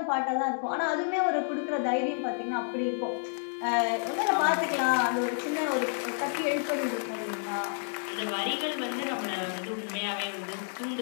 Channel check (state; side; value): silent; right; digital silence